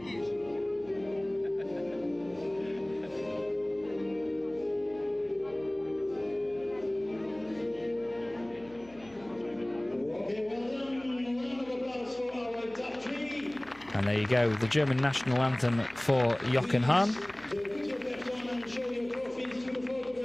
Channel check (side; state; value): left; noise; hum, 25 dB below the sound